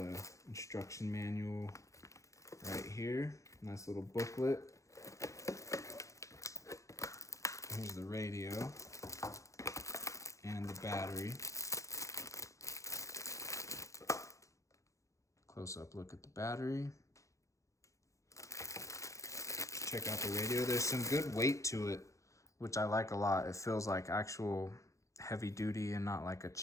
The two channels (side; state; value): right; late; 0.15 ms